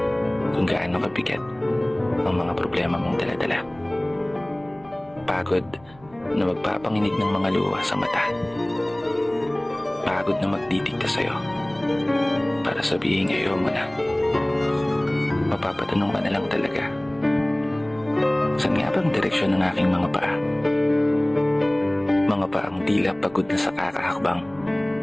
kung gaano kabigat ang mga problema mong daladala. Pagod na magpapanginig ng mga luha sa mata. Pagod na magdidikta sa'yo para sabihin ayaw mo na. Mapapatanong ka na lang talaga, saan nga bang direksyon ng aking mga paa? Mga paang tila pagod na sa kakahakbang.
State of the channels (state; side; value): noise; right; rumble, 26 dB below the sound